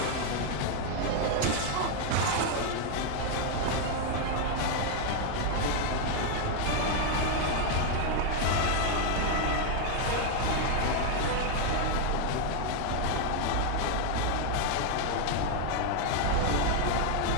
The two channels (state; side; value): different; both; correlation 0.01